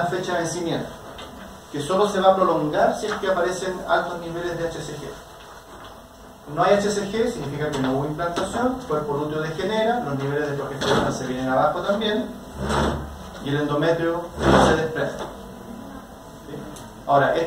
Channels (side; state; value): both; identical; correlation 1.00